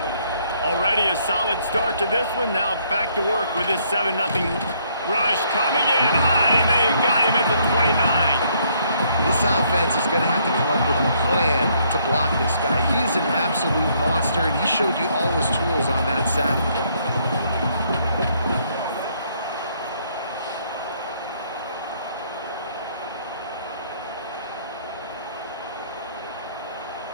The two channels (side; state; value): both; inverted; correlation -0.68